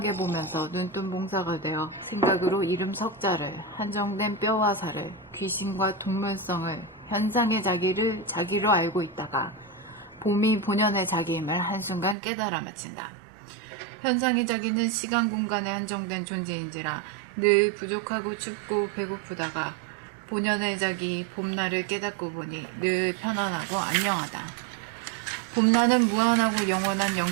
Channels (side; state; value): left; drops out; at 12.2 s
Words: 보면서 눈뜬 봉사가 되어 생각으로 이름 석자를 한정된 뼈와 살을 귀신과 동물성을 현상의 자기를 자기로 알고 있다가 봄이 본연의 자기임을 한순간 깨달아 마친다. 현상의 자기는 시간 공간에 한정된 존재인지라 늘 부족하고 춥고 배고프다가 본연의 자기 봄날을 깨닫고 보니 늘 편안하고 안녕하다. 봄날은 무한하고 영원한